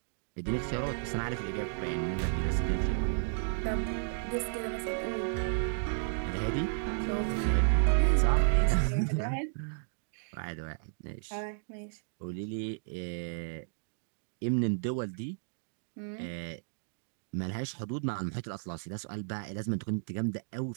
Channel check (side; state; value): left; silent; digital silence